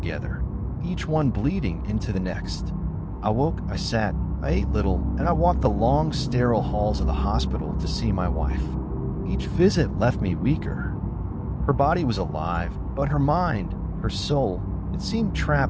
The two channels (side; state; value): both; identical; correlation 1.00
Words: each one bleeding into the next. I woke, I sat, I ate little, and I walked the long, sterile halls of the hospital to see my wife. Each visit left me weaker. Her body was alive, but her mind, her soul, it seemed